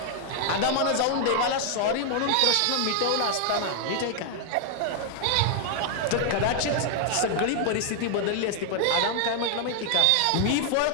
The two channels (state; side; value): different; both; correlation 0.00